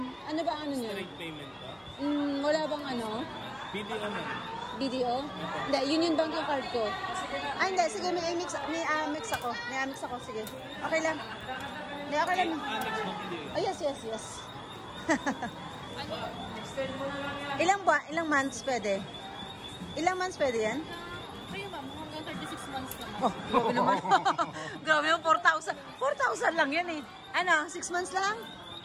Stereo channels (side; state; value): both; identical; correlation 1.00